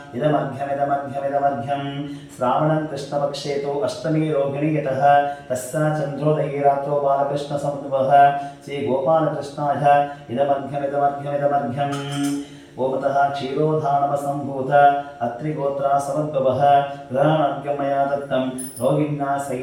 इदमर्घ्यमिदमर्घ्यमिदमर्घ्यं श्रावणं कृष्णपक्षे तु अष्टमी रोहिणी यतः तस्य चन्द्रोदये रात्रौ बालकृष्णसमुद्भवः श्रीगोपालकृष्णाय इदमर्घ्यमिदमर्घ्यमिदमर्घ्यम् ओमतः क्षीरोधानमसम्भूत अत्रिगोत्रा समुद्भवः ग्रहणार्घ्यं मया दत्तं रोहिण्या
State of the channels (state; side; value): identical; both; correlation 1.00